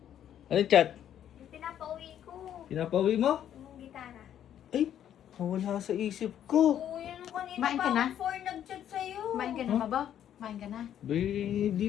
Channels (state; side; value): quieter; right; 10.3 dB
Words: Anong chat? Yung pinapauwi ko. Pinapauwi mo? Yung gitara. Ay, nawala sa isip ko. Oo, yun yung kanina Kumain ka pa na? ako 4 nag-chat sa'yo. kumain ka na ba ba? Kumain ka na? Di